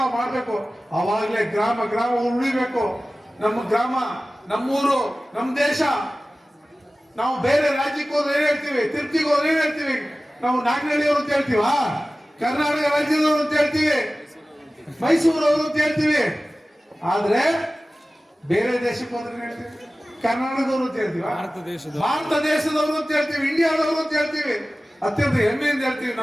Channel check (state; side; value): normal; both; correlation 0.96